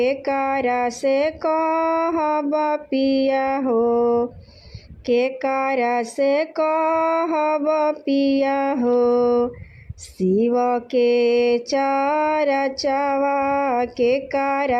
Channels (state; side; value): identical; both; correlation 1.00